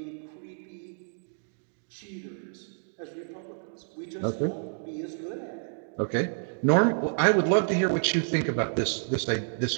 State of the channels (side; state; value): left; silent; digital silence